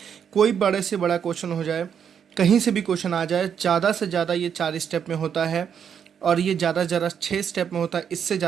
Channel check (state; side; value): quieter; left; 7.8 dB